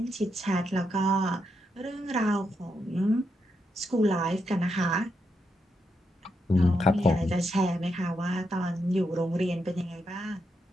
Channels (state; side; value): normal; both; correlation 0.82